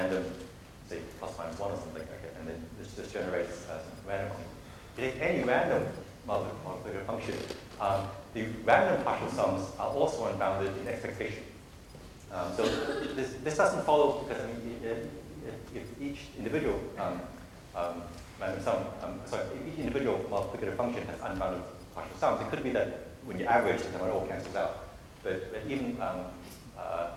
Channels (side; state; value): both; identical; correlation 1.00